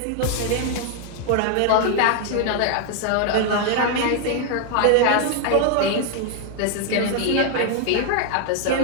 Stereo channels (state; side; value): different; both; correlation 0.00